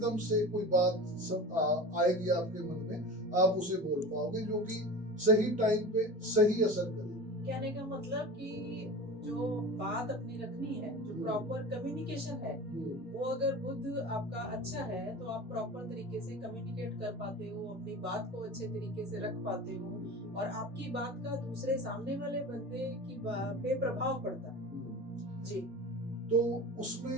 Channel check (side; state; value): both; normal; correlation 0.33